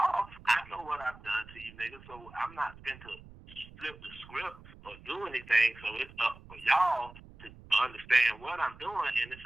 I know what I've done to you niggas, so I'm not going to flip the script or do anything. So it's up for y'all to understand what I'm doing, and it's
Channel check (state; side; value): noise; right; rumble, 19 dB below the sound